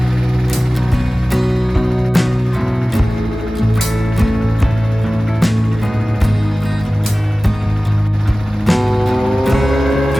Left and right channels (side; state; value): both; normal; correlation 0.97